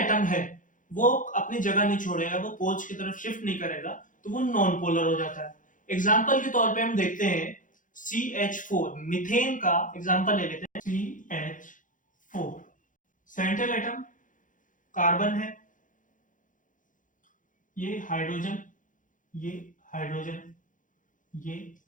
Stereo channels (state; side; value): late; right; 0.38 ms